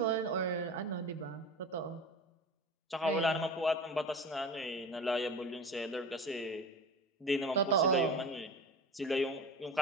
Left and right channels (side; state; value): both; normal; correlation 0.33